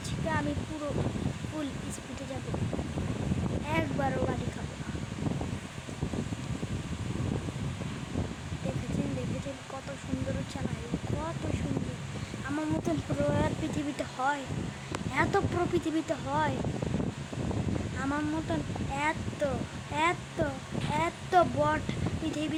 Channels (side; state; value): both; identical; correlation 1.00